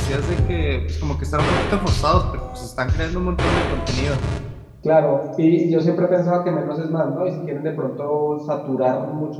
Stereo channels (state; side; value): identical; both; correlation 1.00